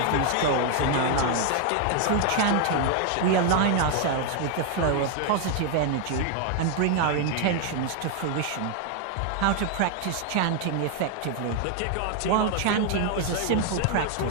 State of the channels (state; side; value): different; both; correlation 0.00